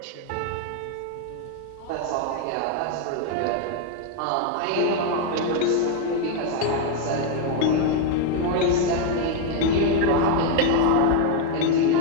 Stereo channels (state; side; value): different; both; correlation 0.01